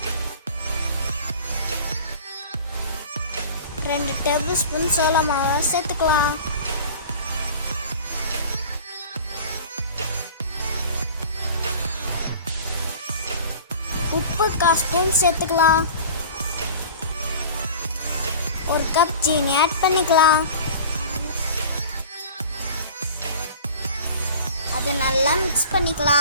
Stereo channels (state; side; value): inverted; both; correlation -0.40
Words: ரெண்டு டேபிள் ஸ்பூன் சோள மாவை சேர்த்துக்கலாம். உப்பு 1/4 ஸ்பூன் சேர்த்துக்கலாம். ஒரு கப் சீனி ஆட் பண்ணிக்கலாம். அதை நல்லா மிக்ஸ்